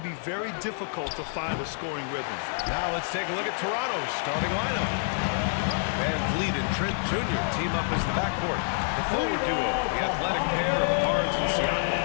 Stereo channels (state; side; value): silent; right; 60 dB below the other